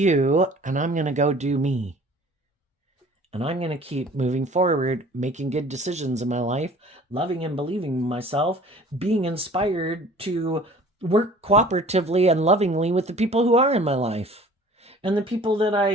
and I'm going to go do me. And I'm going to keep moving forward, making good decisions in my life, loving and believing in myself, being inspired to work cooperatively and lovingly with the people who are in my life and the people that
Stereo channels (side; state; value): both; normal; correlation 0.48